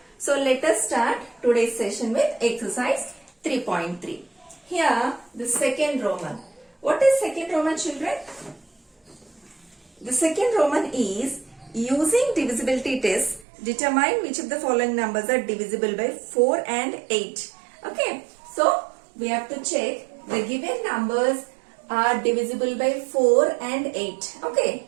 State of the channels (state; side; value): drops out; left; at 13.5 s